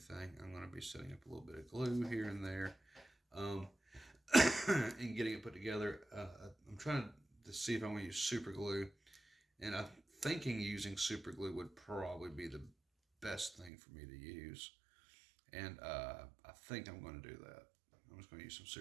I'm going to be setting up a little bit of glue here and there, and getting it put together. I'm trying to see if I want to use super glue, and I'm thinking using super glue would probably be the best thing for me to use, and I think I'm going to do that. I'm just going to use some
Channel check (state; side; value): drops out; left; at 13.7 s